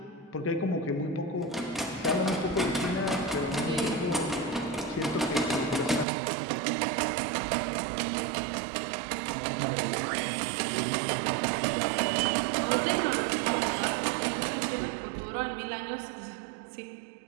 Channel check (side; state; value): left; drops out; at 6.1 s